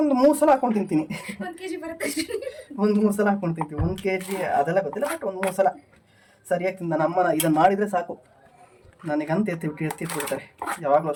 3 ಸಲ ಹಾಕೊಂಡು ತಿಂತೀನಿ. 1 3 ಸಲ ಹಾಕೊಂಡು ತಿಂತೀವಿ. 1 kg ಅದೆಲ್ಲ ಗೊತ್ತಿಲ್ಲ, ಬಟ್ ಒಂದು 3 ಸಲ ಸರಿಯಾಗಿ ತಿಂದ. ನಮ್ಮನ ಇದನ್ನು ಮಾಡಿದರೆ ಸಾಕು, ನನಗಂತ ಎತ್ತಿಟ್ಬಿಡ್ತಾರೆ ಯಾವಾಗಲೂ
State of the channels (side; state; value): both; identical; correlation 1.00